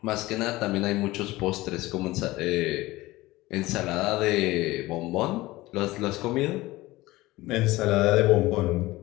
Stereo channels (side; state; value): right; quieter; 19.0 dB